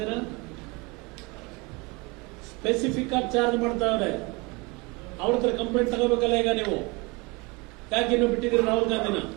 ಸ್ಪೆಸಿಫಿಕ್ ಆಗಿ ಚಾರ್ಜ್ ಮಾಡ್ತಾವ್ರೆ. ಅವ್ರ ಹತ್ರ ಕಂಪ್ಲೇಂಟ್ ತಗೋಬೇಕಲ್ಲ ಈಗ ನೀವು. ಯಾಕೆ ಇನ್ನು ಬಿಟ್ಟಿದ್ದೀರಿ ರಾಹುಲ್ ಗಾಂಧಿನ?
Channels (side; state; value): left; quieter; 26.8 dB